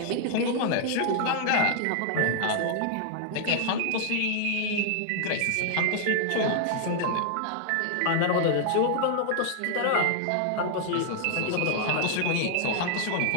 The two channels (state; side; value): different; both; correlation 0.00